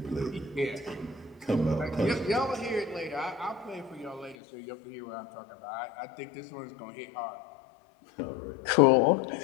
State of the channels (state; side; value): drops out; right; at 4.4 s